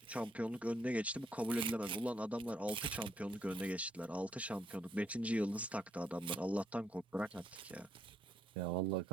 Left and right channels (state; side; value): normal; both; correlation 0.74